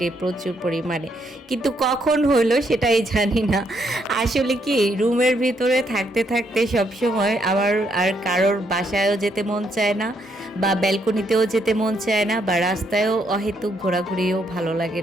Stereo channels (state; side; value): normal; both; correlation 0.74